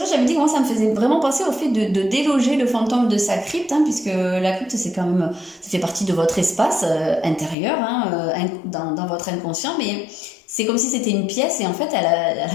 j'avais dit que moi ça me faisait vraiment penser au fait de déloger le fantôme de sa crypte, hein, puisque la crypte c'est quand même, ça fait partie de votre espace intérieur, hein, dans votre inconscient, mais c'est comme si c'était une pièce et en fait elle a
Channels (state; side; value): drops out; right; at 7.6 s